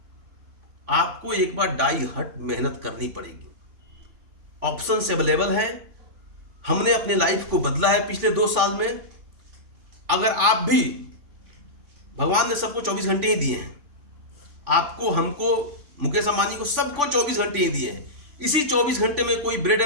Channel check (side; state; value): left; late; 3.4 ms